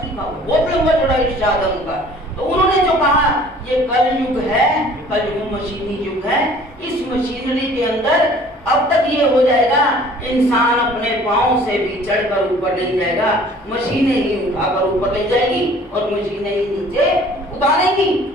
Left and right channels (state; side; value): normal; both; correlation 0.52